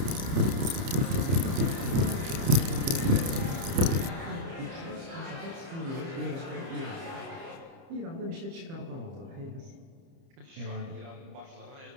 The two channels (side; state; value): left; late; 30 ms